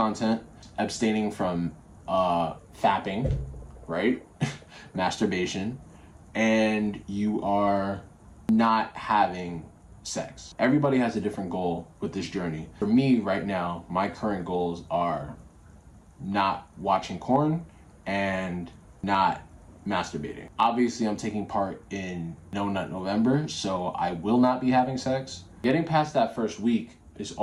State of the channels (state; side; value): identical; both; correlation 1.00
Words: abstaining from fapping, right? Masturbation, and you are not having sex. Everybody has a different goal with this journey. For me right now, my current goals are not watching porn and not masturbating. Obviously, I'm taking part in No Nut November, so I will not be having sex. Getting past that first week is